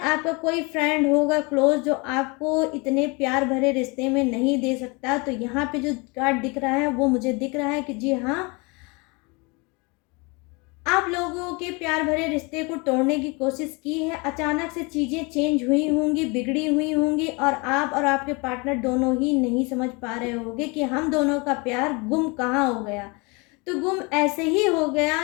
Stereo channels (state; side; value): quieter; right; 28.8 dB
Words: आपका कोई फ्रेंड होगा क्लोज, जो आपको इतने प्यार भरे रिश्ते में नहीं दे सकता। तो यहाँ पे जो कार्ड दिख रहा है वो मुझे दिख रहा है कि जी हाँ, आप लोगों लोगों के प्यार भरे रिश्ते को तोड़ने की कोशिश की है। अचानक से चीज़ें चेंज हुई होंगी, बिगड़ी हुई होंगी और आप और आपके पार्टनर दोनों ही नहीं समझ पा रहे होंगे कि हम दोनों का प्यार गुम कहाँ हो गया। तो गुम ऐसे ही हो गया